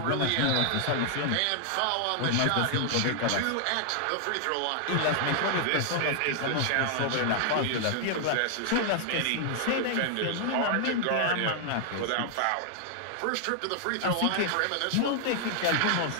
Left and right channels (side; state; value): both; different; correlation 0.00